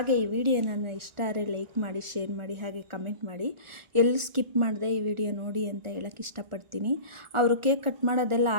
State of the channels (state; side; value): late; left; 1.4 ms